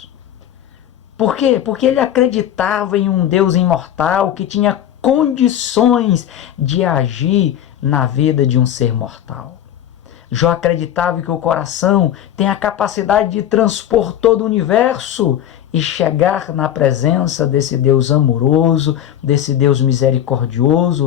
Por quê? Porque ele acreditava em um Deus imortal que tinha condições de agir na vida de um ser mortal. Jó acreditava que o coração tem a capacidade de transpor todo o universo e chegar na presença desse Deus amoroso, desse Deus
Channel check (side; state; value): right; quieter; 10.8 dB